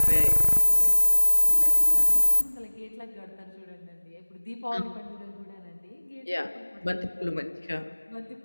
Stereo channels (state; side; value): inverted; both; correlation -1.00